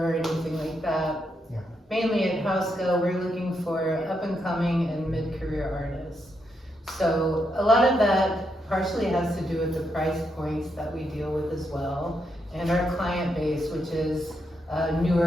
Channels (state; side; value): normal; both; correlation 0.81